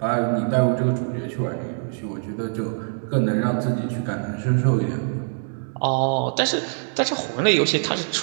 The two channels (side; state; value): left; silent; 60 dB below the other